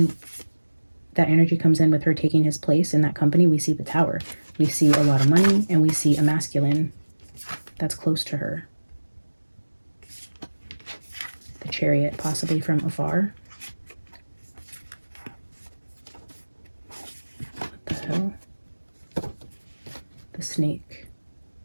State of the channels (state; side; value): inverted; both; correlation -1.00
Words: that energy comes in with her taking his place in that company, we see the Tower. We see a lot of money, and we see a masculine that's close to her. The Chariot, possibly from afar. What the hell? The Snake.